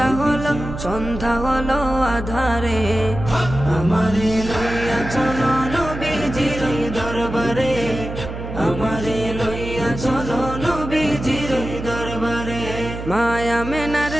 হলো, সন্ধ্যা হলো আধারে। আমারে লইয়া চলো নবীজির দরবারে, আমারে লইয়া চলো নবীজির দরবারে। মায়া মেনার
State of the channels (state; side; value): noise; right; hum, 8 dB below the sound